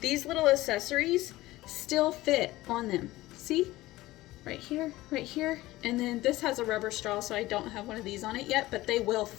these little accessories still fit on them. See? Right here, and then this has a rubber straw, so I don't have one of these on it yet, but they will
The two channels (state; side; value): quieter; right; 17.7 dB